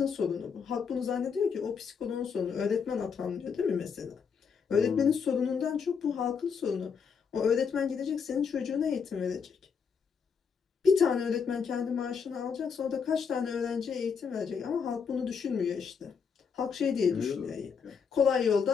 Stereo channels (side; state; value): right; quieter; 6.2 dB